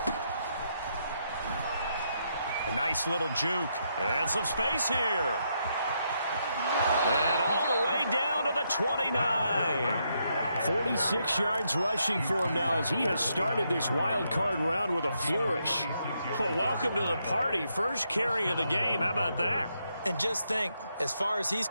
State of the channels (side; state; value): both; inverted; correlation -0.79